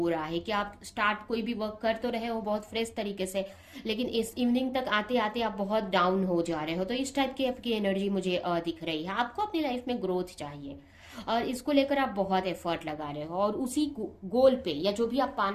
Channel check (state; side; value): identical; both; correlation 1.00